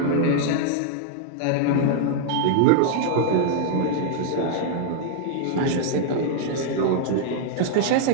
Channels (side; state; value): both; different; correlation -0.01